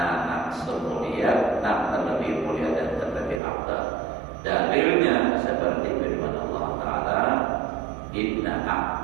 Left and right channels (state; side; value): drops out; left; at 3.4 s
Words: semulia, terlebih mulia dan terlebih afdal. Dalilnya seperti firman Allah Ta'ala, inna